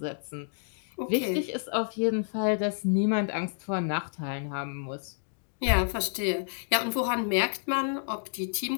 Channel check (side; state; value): right; silent; digital silence